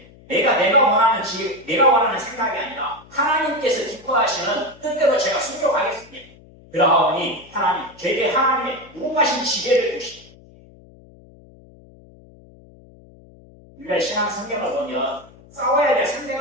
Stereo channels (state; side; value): noise; left; hum, 24 dB below the sound